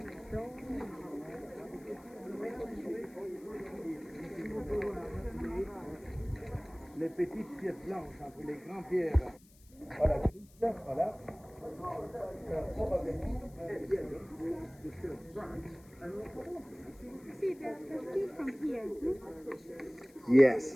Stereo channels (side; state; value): left; noise; hiss, 27 dB below the sound